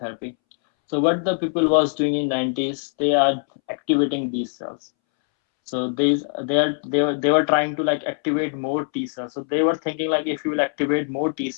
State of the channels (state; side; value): silent; right; 64 dB below the other